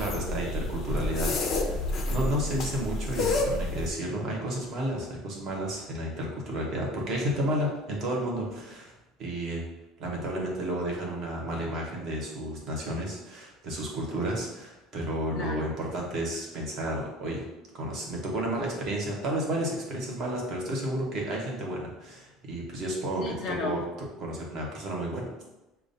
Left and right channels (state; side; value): normal; both; correlation 0.43